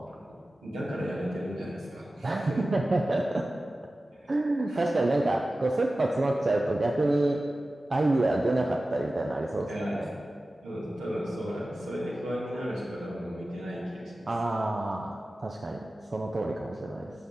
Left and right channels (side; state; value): both; normal; correlation 0.95